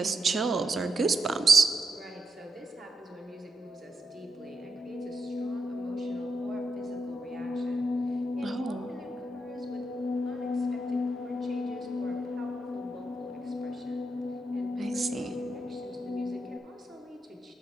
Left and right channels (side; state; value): both; normal; correlation 0.84